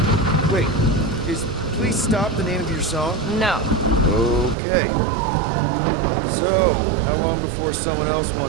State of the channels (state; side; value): drops out; left; at 4.5 s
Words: Wait, is Please Stop the name of your song? No. Okay. So, how long before someone else